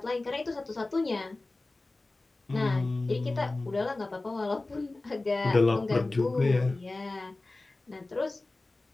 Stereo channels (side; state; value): right; quieter; 3.1 dB